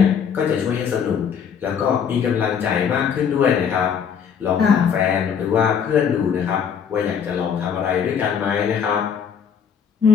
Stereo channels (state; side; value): quieter; right; 7.3 dB